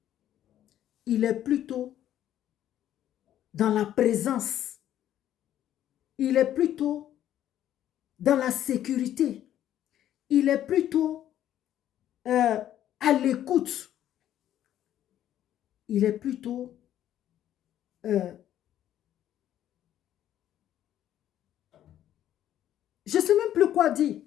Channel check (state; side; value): quieter; right; 11.6 dB